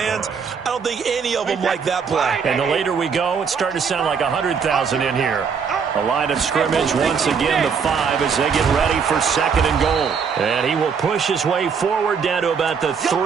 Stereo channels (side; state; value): left; quieter; 6.2 dB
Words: I don't think any of them like that play. And the later we go, it's starting to sound like 100,000 in here. A line of scrimmage once again, the 5 as they get ready for 2nd and goal. And he will push his way forward down to about the